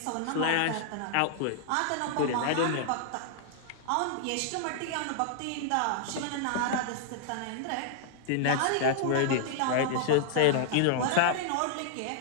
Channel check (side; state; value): both; different; correlation -0.01